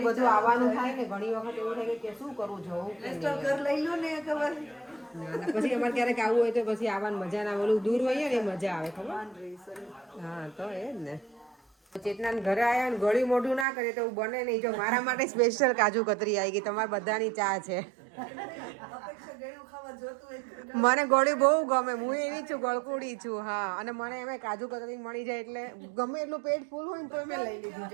બધું આવવાનું થાય ને ઘણી વખત એવું થાય કે શું કરવું જવું કે નહીં. તો ઘર લઈ લો ને ખબર અને પછી અમારે ક્યારેક આવવું હોય તો પછી આવવાની મજા ના. ઓલું દૂર હોઈએ ને એ મજા આવે ખબર. હા તો એ જ ને. ચેતના ઘરે આવ્યા ને ગળ્યું મોઢું ના કરે તો એવું બને નહીં. જો મારા માટે સ્પેશિયલ કાજુ કતરી આવી ગઈ. તમારા બધાની ચા છે. અપેક્ષા ગળ્યું ખાવા જોતું હોય. મને ગળ્યું બહુ ગમે. હું એવી છું ગળકુડી છું. હા અને મને એમાં કાજુ કતરી મળી જાય એટલે ગમે એટલું પેટ ફૂલ હોય ને તો મેં લઈ લીધું.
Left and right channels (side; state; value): left; drops out; at 13.7 s